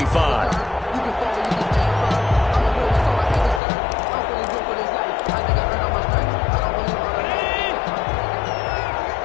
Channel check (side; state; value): right; drops out; at 3.6 s